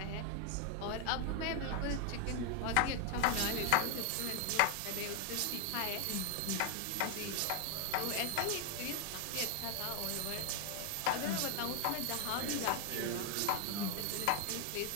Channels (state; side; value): different; both; correlation 0.01